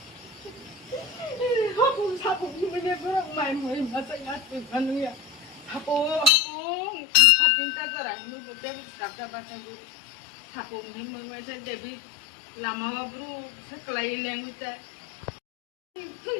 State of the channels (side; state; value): right; drops out; at 6.3 s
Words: Hapung hapung ini berang main main masa ngatur anu ya. Hapung patinta cerai nu betul kakak bahasa guru. Hapung ini mengasa Dewi lama bro sekelai yang ucap.